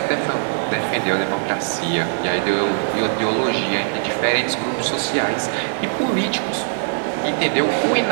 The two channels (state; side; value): silent; left; 62 dB below the other